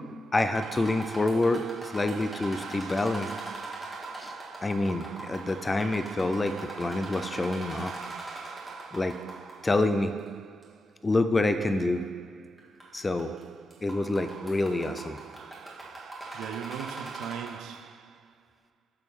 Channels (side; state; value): both; normal; correlation 0.90